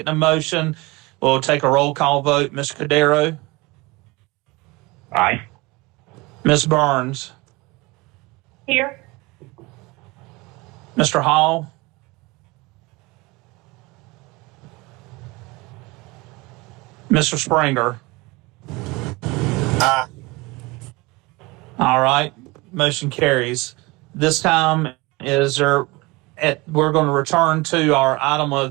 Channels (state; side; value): quieter; left; 23.7 dB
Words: the motion. We'll take a roll call vote. Mr. Cordero? Aye. Ms. Burns? Here. Mr. Hall? Mr. Springer? Aye. All right, motion carries. This time we're going to return to our item